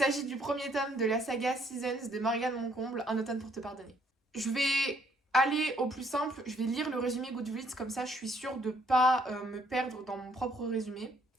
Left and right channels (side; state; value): both; normal; correlation 0.66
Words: du premier tome de la saga Seasons de Morgane Moncomble, Un automne pour te pardonner. Je vais aller au plus simple, je vais lire le résumé Goodreads, comme ça je suis sûre de pas me perdre dans mon propre résumé.